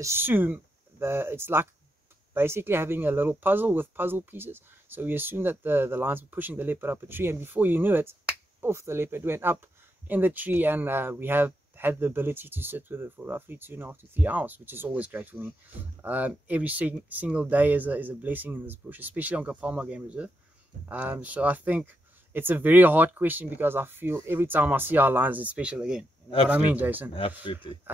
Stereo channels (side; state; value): both; normal; correlation 0.83